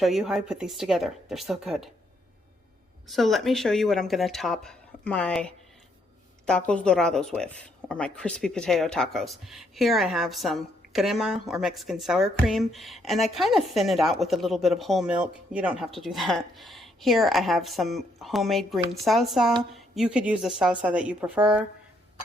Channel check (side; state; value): both; normal; correlation 0.72